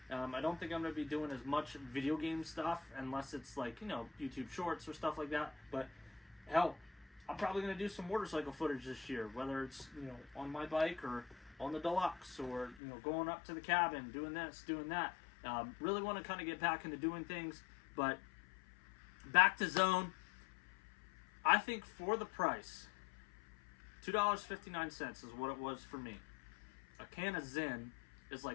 I don't think I'm going to be doing as much video game stuff unless it's like, you know, YouTube shorts or stuff like that. But hell, I'm probably going to do some motorcycle footage this year, whether it's, you know, on my bike or on the Deluxe, or, you know, going up to the cabin, doing this, doing that. Really want to kind of get back into doing things. But back to Zone. I think for the price, $2.59 is what it was for me. A can of Zyn is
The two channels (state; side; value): drops out; right; at 12.8 s